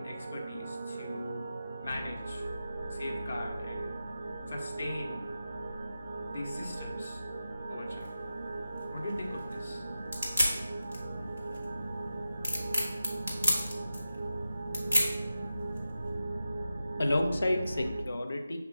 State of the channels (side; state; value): both; inverted; correlation -0.91